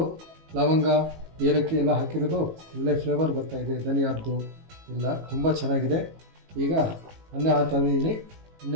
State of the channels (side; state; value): left; late; 18 ms